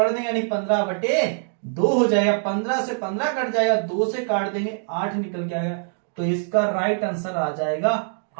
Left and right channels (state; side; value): silent; left; digital silence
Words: देंगे, यानी 15/2 हो जाएगा। 15 से 15 कट जाएगा, 2 से काट देंगे 8 निकल के आएगा। तो इसका राइट आंसर आ जाएगा